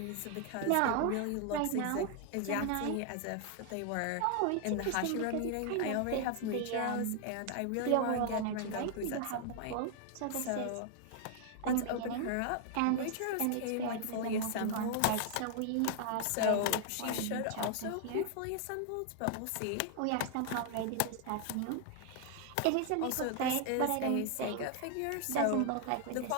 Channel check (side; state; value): both; different; correlation 0.00